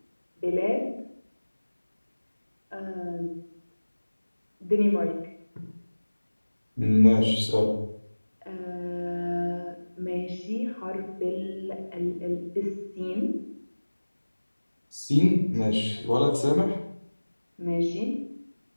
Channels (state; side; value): inverted; both; correlation -1.00